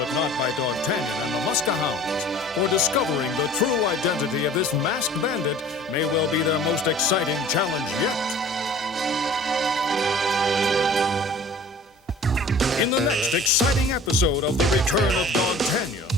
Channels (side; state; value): both; normal; correlation 0.46